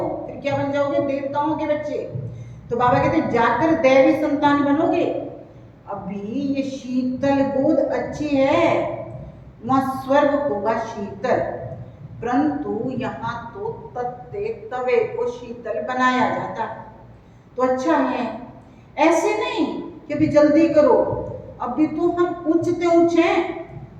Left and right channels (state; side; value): identical; both; correlation 1.00